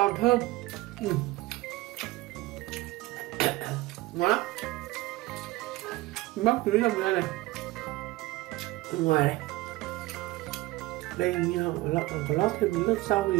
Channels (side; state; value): left; quieter; 19.1 dB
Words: thơm. Ngon lắm. Bóc túi rong ra này. Bên ngoài này. Đây như có lót thêm lớp rau